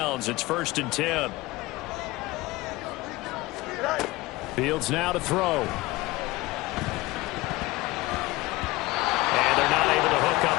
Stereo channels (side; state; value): right; quieter; 20.2 dB